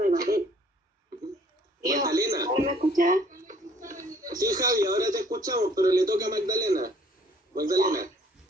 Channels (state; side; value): normal; both; correlation 0.59